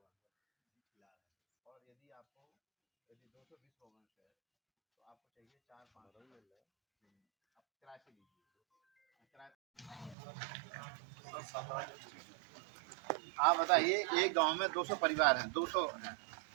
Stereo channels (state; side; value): drops out; left; at 10.2 s